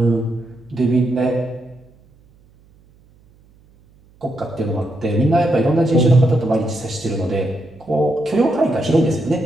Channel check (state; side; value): noise; right; hum, 30 dB below the sound